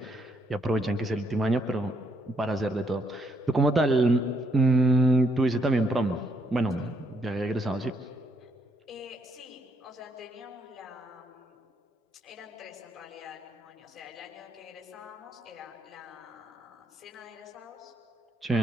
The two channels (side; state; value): both; normal; correlation 0.73